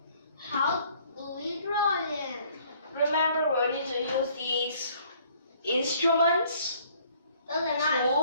How do we draw them? Remember, we need to use these instruments, Those are not.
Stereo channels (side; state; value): both; inverted; correlation -0.60